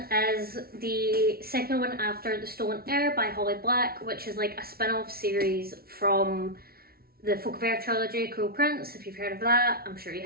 is the second one after The Stolen Heir by Holly Black, which is like a spin-off series from the Folk of Air trilogy, Cruel Prince, if you've heard of that, I'm sure you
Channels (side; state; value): left; late; 0.44 ms